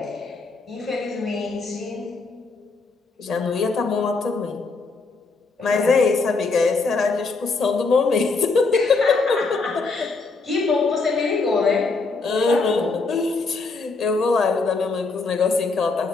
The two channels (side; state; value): right; quieter; 4.0 dB